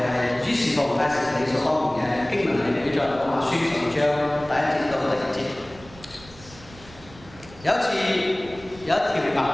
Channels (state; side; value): noise; right; rumble, 21 dB below the sound